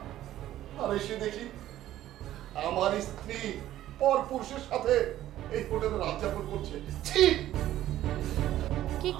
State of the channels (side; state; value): left; quieter; 13.4 dB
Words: আর এসে দেখি আমার স্ত্রী পর পুরুষের সাথে এই হোটেলে রাত যাপন করছে। ছি! কি